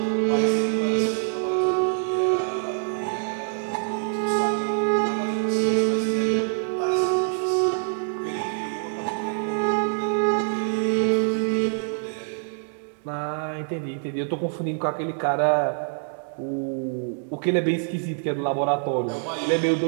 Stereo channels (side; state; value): left; silent; digital silence